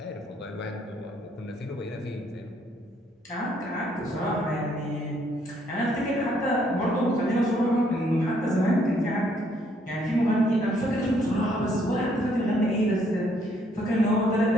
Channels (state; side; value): normal; both; correlation 0.68